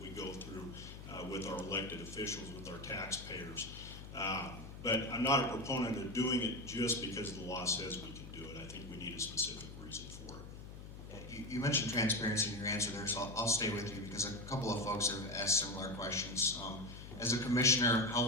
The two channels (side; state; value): left; noise; hum, 12 dB below the sound